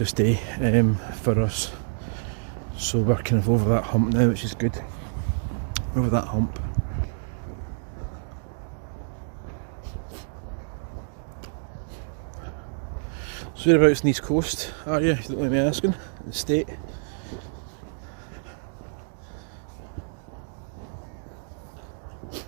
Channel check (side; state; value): left; silent; digital silence